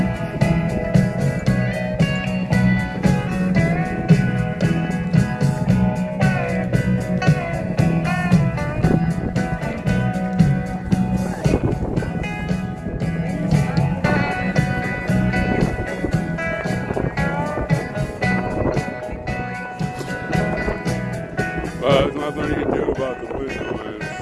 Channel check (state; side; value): identical; both; correlation 1.00